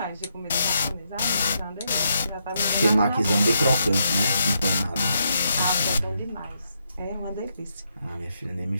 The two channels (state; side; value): inverted; both; correlation -0.79